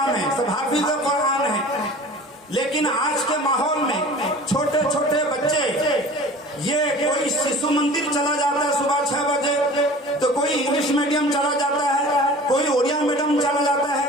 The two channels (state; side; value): normal; both; correlation 0.42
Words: ہیں، سب حافظ قرآن ہیں، لیکن آج کے ماحول میں چھوٹے چھوٹے بچے یہ کوئی شیشو مندر چلا جاتا ہے صبح 6 بجے، تو کوئی انگلش میڈیم چلا جاتا ہے، کوئی اڑیا میڈیم چلا جاتا